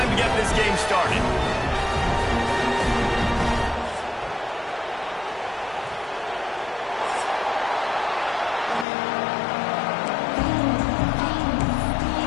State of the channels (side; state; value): right; drops out; at 8.8 s